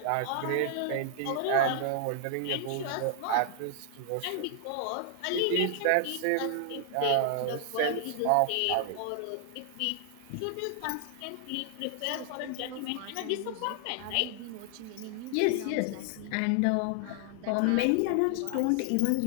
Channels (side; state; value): both; different; correlation 0.00